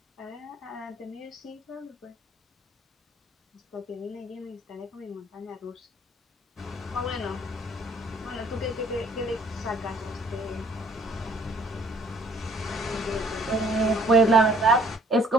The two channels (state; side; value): normal; both; correlation 0.60